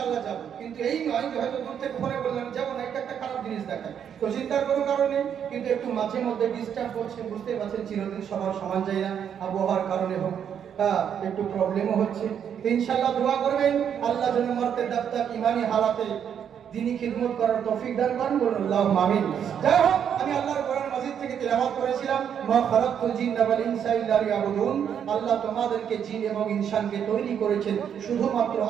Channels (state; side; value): quieter; left; 8.4 dB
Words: যাবো, কিন্তু এই নয় যে হয়তো দূর থেকে ফোনে বললাম যাবো না, একটা খারাপ জিনিস দেখায়। তো চিন্তার কোনো কারণে, কিন্তু একটু মাঝে মধ্যে ডিস্টার্ব করছে, বুঝতে পারছেন চিরদিন সবার সমান যায় না, আবহাওয়ার কারণে হোক, একটু প্রবলেমও হচ্ছে। ইনশাআল্লাহ দোয়া করবেন আল্লাহ যেন মরতে দাপ্তার ইমানি হালাতে দিনী খিদমত করার তৌফিক দান করেন, বলুন আল্লাহুম্মা আমিন। যাই হোক, আমি আল্লাহর কোরআন মাজিদ থেকে তেলাওয়াত করেছিলাম, মা খালাকতুল জিন্না ওয়াল ইনসা ইল্লা লিয়াবুদুন। আল্লাহ তোমাদেরকে জিন এবং ইনসানকে তৈরি করেছেন শুধুমাত্র